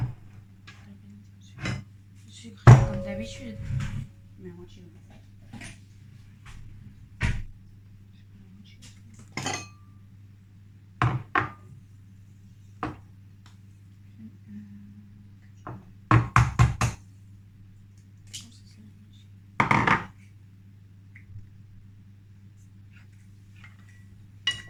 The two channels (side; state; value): both; identical; correlation 1.00